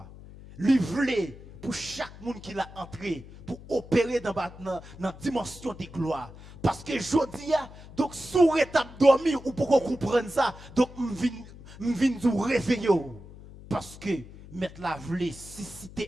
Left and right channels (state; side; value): noise; left; hum, 17 dB below the sound